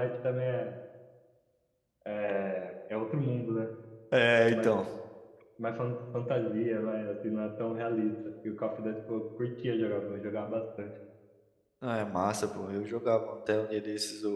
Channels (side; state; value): both; identical; correlation 1.00